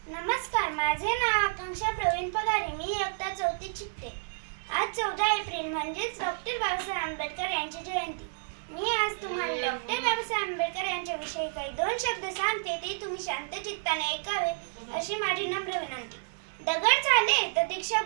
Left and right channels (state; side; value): silent; left; 58 dB below the other